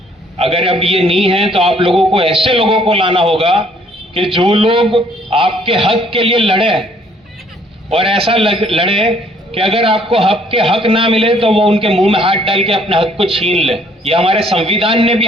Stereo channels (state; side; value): normal; both; correlation 0.62